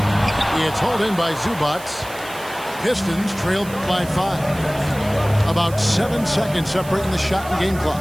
It's hauled in by Zubac. Pistons trailed by 5. About 7 seconds separating the shot and game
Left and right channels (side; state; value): right; noise; hiss, 17 dB below the sound